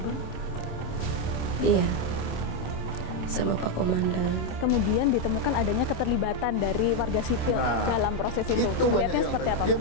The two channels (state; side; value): late; right; 27 ms